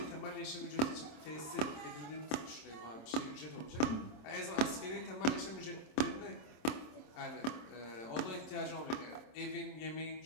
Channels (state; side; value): late; right; 27 ms